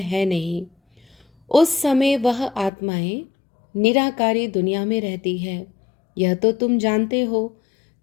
नहीं। उस समय वह आत्माएं निराकारी दुनिया में रहती है। यह तो तुम जानते हो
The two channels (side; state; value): right; drops out; at 2.7 s